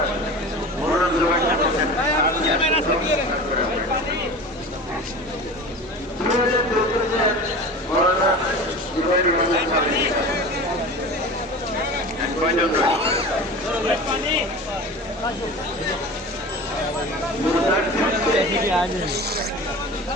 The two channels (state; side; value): normal; both; correlation 0.34